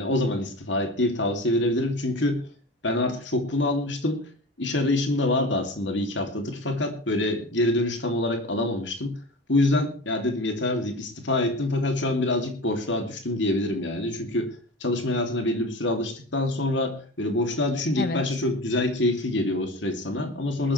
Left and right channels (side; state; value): both; normal; correlation 0.33